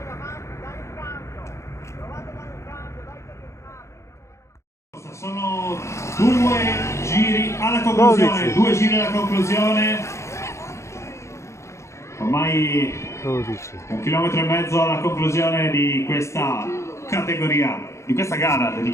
Sono 2 giri alla conclusione, 2 giri alla conclusione. Ormai 12. 1,5 km alla conclusione di questa categoria, di questa gara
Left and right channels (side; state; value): right; late; 0.14 ms